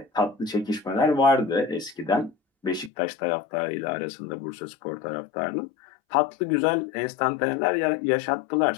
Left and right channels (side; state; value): right; drops out; at 2.9 s